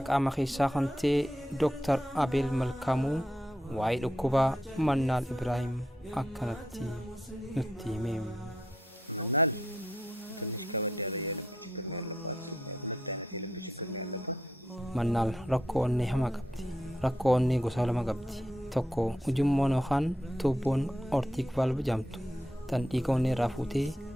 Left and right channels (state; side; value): normal; both; correlation 0.80